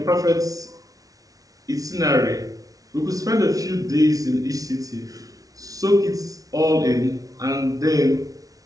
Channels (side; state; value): left; late; 0.18 ms